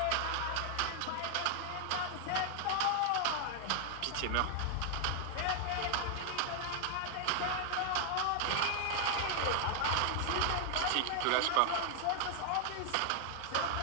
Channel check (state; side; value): different; both; correlation 0.00